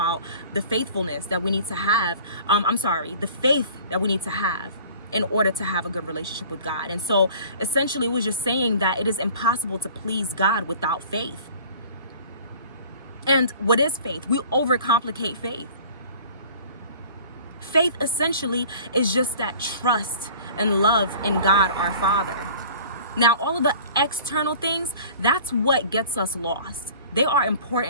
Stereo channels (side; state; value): both; inverted; correlation -0.46